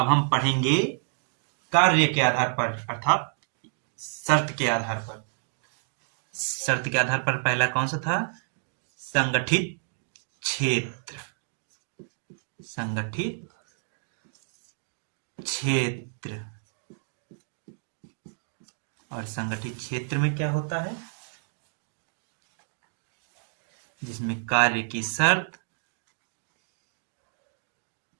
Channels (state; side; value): silent; left; digital silence